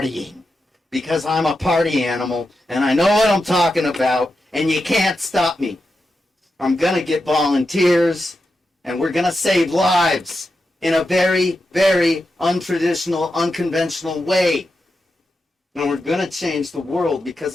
Because I'm a party animal, and I know what I'm talking about, and you can't stop me. I'm going to get volunteers, and we're going to save lives in a very, very untraditional, unconventional way. And we're going to change the world, because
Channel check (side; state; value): both; normal; correlation 0.88